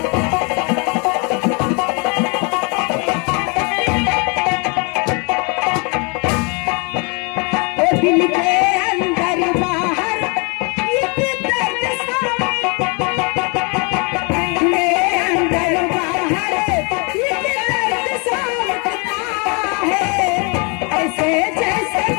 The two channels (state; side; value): quieter; right; 32.6 dB